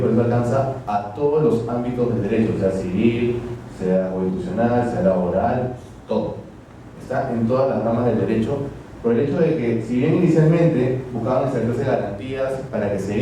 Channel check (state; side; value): identical; both; correlation 1.00